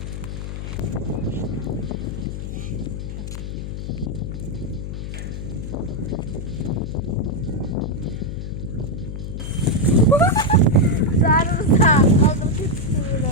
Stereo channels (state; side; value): noise; left; hum, 6 dB below the sound